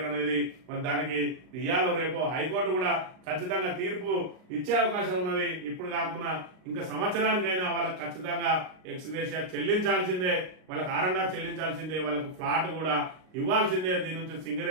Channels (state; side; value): late; left; 38 ms